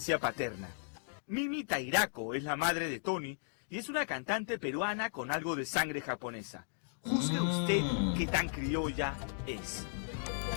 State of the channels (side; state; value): right; silent; digital silence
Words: paterna. Mimi Tairako es la madre de Tony y es una cantante peruana con algo de sangre japonesa. Juzgue usted qué tan criolla es.